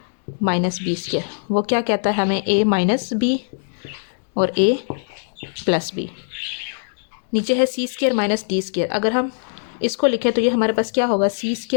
माइनस b²। वो क्या कहता है हमें, a माइनस b और a प्लस b। नीचे है c² माइनस d²। अगर हम इसको लिखें तो ये हमारे पास क्या होगा,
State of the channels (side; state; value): right; silent; digital silence